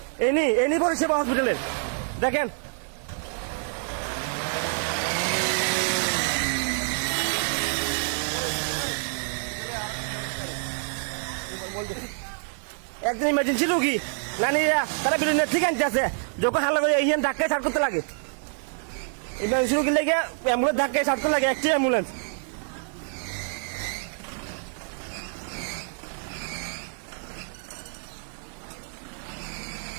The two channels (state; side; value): silent; left; 60 dB below the other